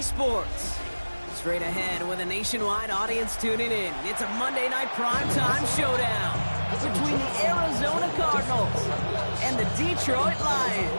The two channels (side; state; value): both; inverted; correlation -1.00